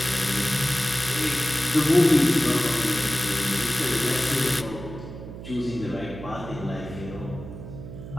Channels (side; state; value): right; noise; hum, 12 dB below the sound